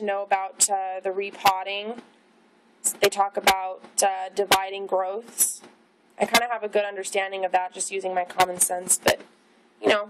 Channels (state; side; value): identical; both; correlation 1.00